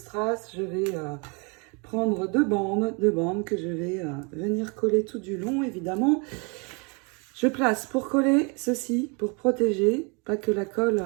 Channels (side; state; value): left; quieter; 32.5 dB